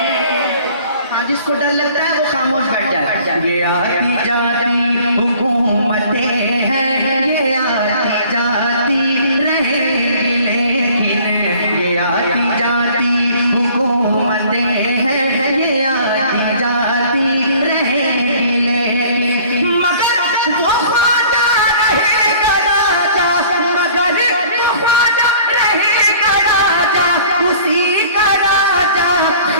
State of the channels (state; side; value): inverted; both; correlation -0.51